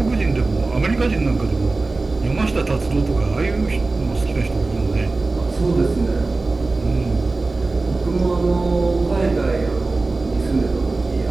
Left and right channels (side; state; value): left; quieter; 3.5 dB